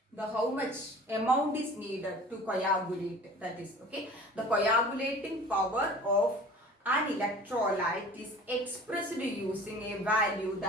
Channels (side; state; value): both; normal; correlation 0.44